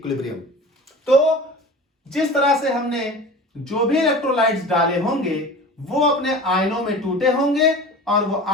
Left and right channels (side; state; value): both; normal; correlation 0.37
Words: तो जिस तरह से हमने जो भी इलेक्ट्रोलाइट्स डाले होंगे वो अपने आयनों में टूटे होंगे और वो